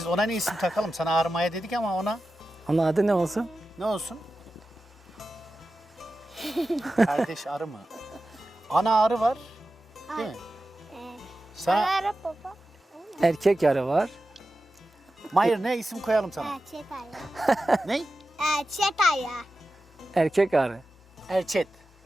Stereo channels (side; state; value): both; normal; correlation 0.93